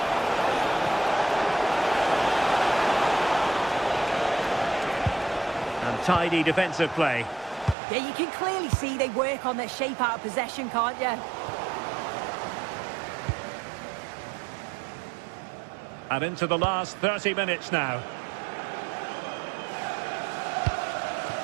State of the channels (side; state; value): left; drops out; at 7.8 s